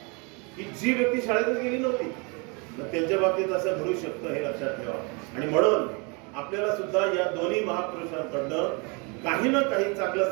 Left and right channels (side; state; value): left; quieter; 31.8 dB